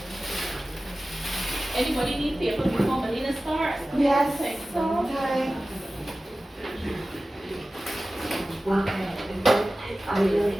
Anybody need paper before Melina starts? Yes, Okay. sometimes.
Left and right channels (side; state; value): both; normal; correlation 0.96